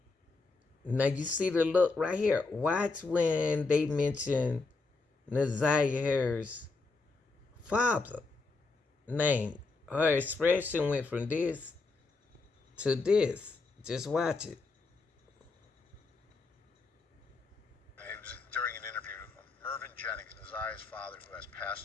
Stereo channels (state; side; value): quieter; right; 3.9 dB